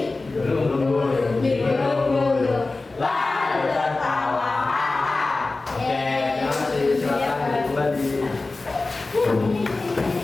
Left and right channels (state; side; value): quieter; right; 3.4 dB